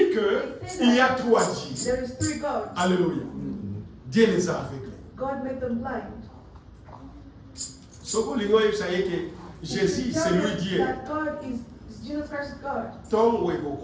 qu'il y a trois dieux. There is three gods. Alléluia. Dieu les a aveuglés. God made them blind. Ce que les gens savent que Jésus c'est lui Dieu. That God is Jesus Christ is God. Tom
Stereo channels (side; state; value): both; identical; correlation 1.00